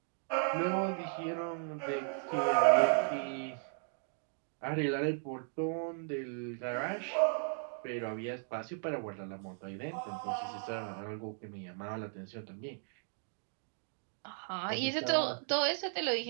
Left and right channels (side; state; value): left; silent; 54 dB below the other